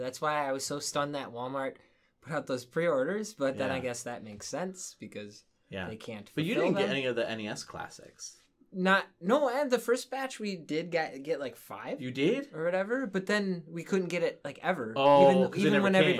why I was so stunned that Walmart put out those pre-orders, but then Yeah. I guess that makes sense, because they can't But you fulfill didn't get them. any of the NES classics. And the first batch we did get like 5 You did? or whatever, but then we couldn't get it like ever. Oh, 'cause it even never when came.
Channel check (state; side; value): identical; both; correlation 1.00